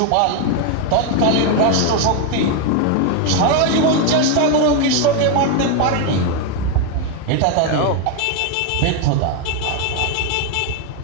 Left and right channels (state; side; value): different; both; correlation 0.01